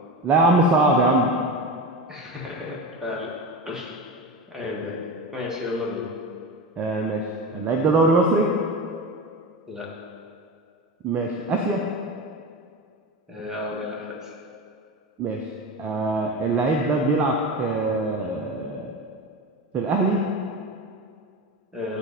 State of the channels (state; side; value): normal; both; correlation 0.24